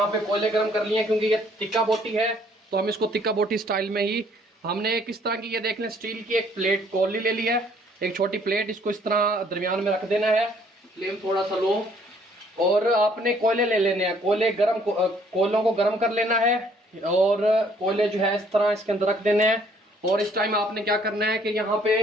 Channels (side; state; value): both; normal; correlation 0.62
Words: पे कोयले गर्म कर लिए हैं, क्योंकि ये तिक्का बोटी है, तो हम इसको तिक्का बोटी स्टाइल में ही हमने किस तरह की, ये देख लें स्टील की एक प्लेट कोली ले ली है, एक छोटी प्लेट, इसको इस तरह दरमियान में रख देना है। फ्लेम थोड़ा सा लो और आपने कोयले ले लेने हैं। कोयलों को गर्म कर लेना है और कोयले जो है इस तरह इसके अंदर रख देने हैं। और इस टाइम आपने क्या करना है कि यहाँ पे